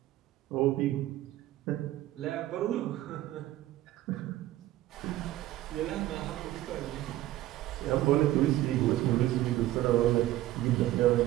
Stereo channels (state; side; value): quieter; left; 15.2 dB